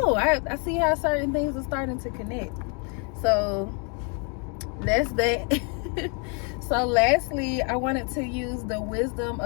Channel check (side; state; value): right; quieter; 36.6 dB